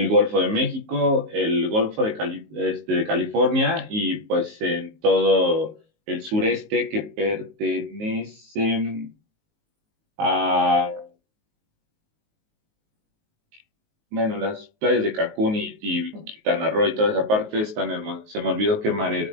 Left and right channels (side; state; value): left; late; 19 ms